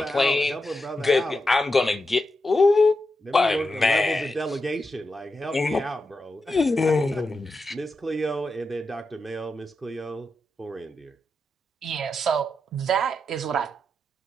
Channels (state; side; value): normal; both; correlation 0.87